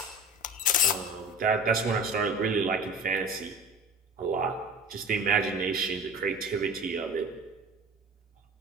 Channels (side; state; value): both; normal; correlation 0.40